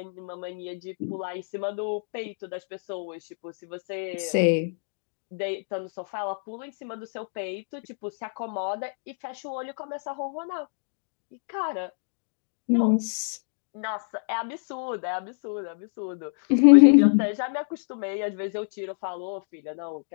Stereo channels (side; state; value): right; silent; digital silence